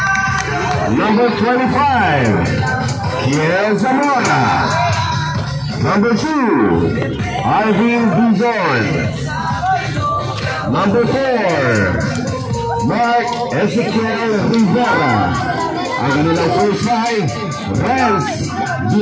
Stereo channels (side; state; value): both; identical; correlation 1.00